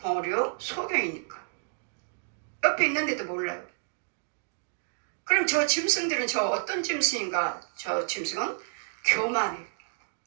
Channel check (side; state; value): left; silent; digital silence